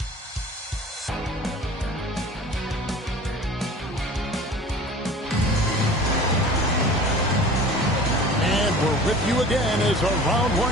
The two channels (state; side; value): normal; both; correlation 0.42